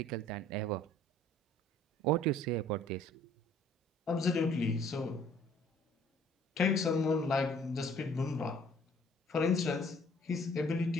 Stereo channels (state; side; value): normal; both; correlation 0.56